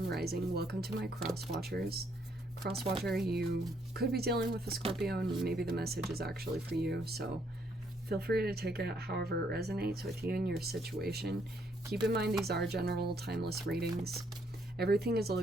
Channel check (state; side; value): normal; both; correlation 0.71